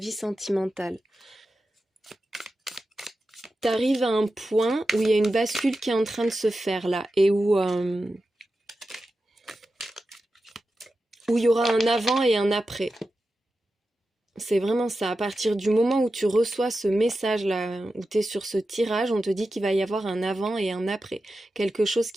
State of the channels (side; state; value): both; normal; correlation 0.92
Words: sentimentale. T'arrives à un point où il y a une bascule qui est en train de se faire là et où il y aura un avant et un après. C'est vraiment ça. À partir du moment où tu reçois ce message-là, où tu es sur ce tirage, on te dit qu'il va y avoir un avant et un après. Quelque chose